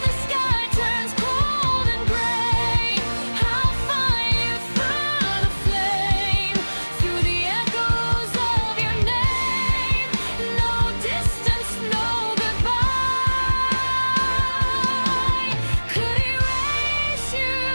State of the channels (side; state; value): both; inverted; correlation -1.00